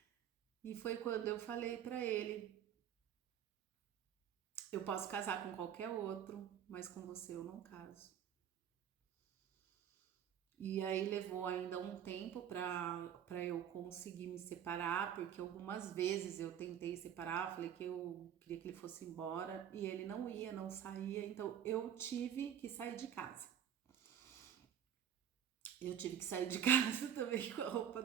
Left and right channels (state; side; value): quieter; left; 9.5 dB